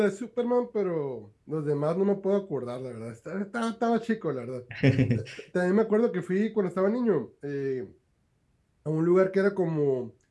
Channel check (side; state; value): both; identical; correlation 1.00